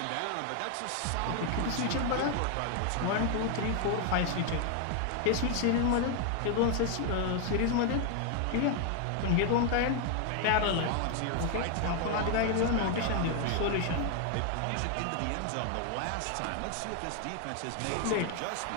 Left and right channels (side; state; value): both; different; correlation 0.00